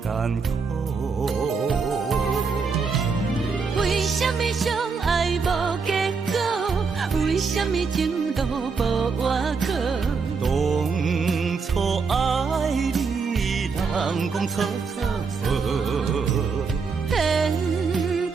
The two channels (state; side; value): quieter; left; 5.1 dB